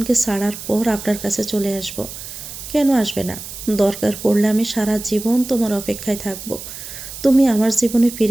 ছাড়ার পর আপনার কাছে চলে আসব। কেন আসবে না? দরকার পড়লে আমি সারা জীবন তোমার অপেক্ষায় থাকব। তুমি আমার জীবনে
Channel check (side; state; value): right; noise; hiss, 11 dB below the sound